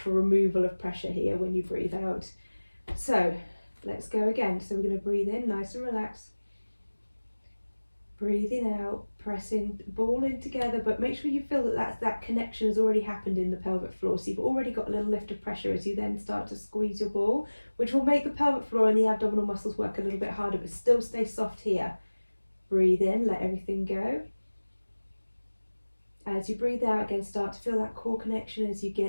removal of pressure here when you breathe out. So let's go again. So we're going to breathe in, nice and relaxed. Breathing out, pressing the ball in together, but make sure you feel that connection has already happened in the pelvic floor. So you've already got a little lift of pressure as you then start to squeeze your ball, which will make the pelvic floor and the abdominal muscles work a little bit harder, but still stay soft here. Breathe in, let everything go. As you breathe out, again, start to feel that core connection as you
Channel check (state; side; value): inverted; both; correlation -1.00